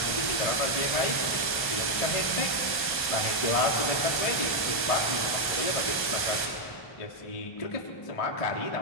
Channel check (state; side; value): late; right; 1.8 ms